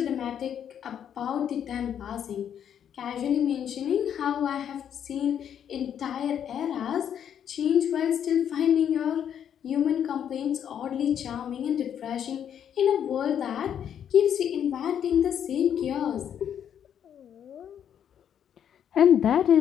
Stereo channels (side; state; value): right; quieter; 9.1 dB